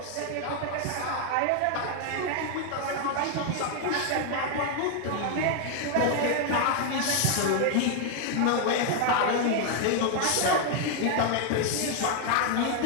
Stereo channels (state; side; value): different; both; correlation 0.00